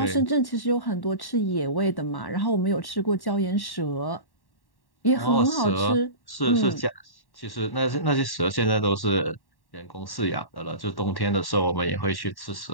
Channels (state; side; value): late; right; 1.1 ms